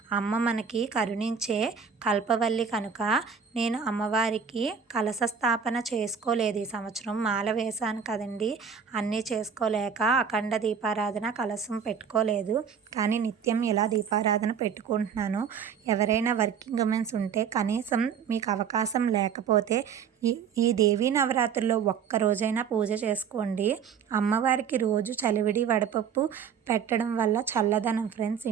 అమ్మ మనకి కరుణించే కల్పవల్లి కనుక నేను అమ్మవారికి కలశ స్థాపన చేసుకోలేదు ఈ సంవత్సరం. మాల వేశాను కదండి, అన్నీ చేసుకోలేక అఖండ దీపారాధన కలశం పెట్టుకోలేదు. కానీ నిత్యం ఇలా దీపారాధన పెట్టుకుంటున్నాను. ఎవరైనా వర్కింగ్ ఉమెన్స్ ఉంటే కనీసం మీకు అవకాశం లేకపోతే ఈ దేవీ నవరాత్రుల్లో ఒక్కరోజైనా పూజ చేసుకోండి. అమ్మవారికి రోజు చలివిడి వడపప్పు పెట్టడం వల్ల చల్లదనం ఫ్రెండ్స్.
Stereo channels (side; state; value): left; quieter; 7.0 dB